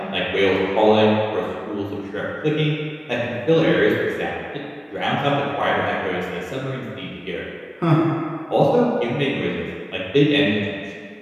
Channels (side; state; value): both; identical; correlation 1.00